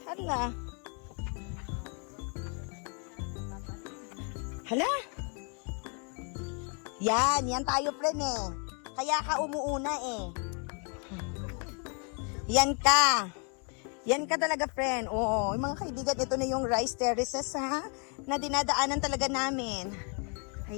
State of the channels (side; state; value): right; quieter; 38.4 dB